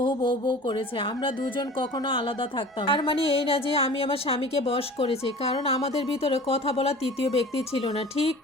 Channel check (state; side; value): normal; both; correlation 0.41